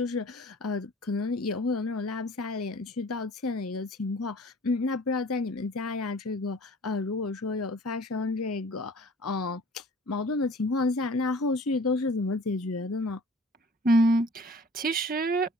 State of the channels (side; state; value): both; normal; correlation 0.48